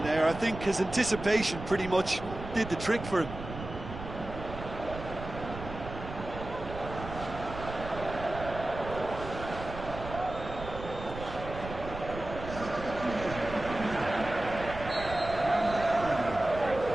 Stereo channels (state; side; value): noise; right; rumble, 10 dB below the sound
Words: there. I think his anticipation pretty much did the trick for him.